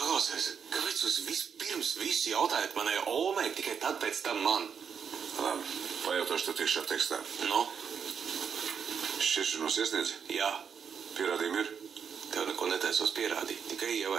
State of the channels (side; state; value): left; quieter; 7.0 dB